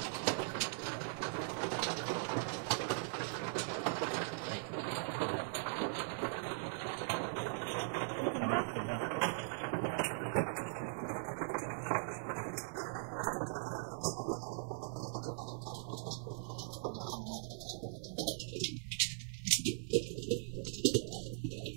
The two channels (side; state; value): left; silent; digital silence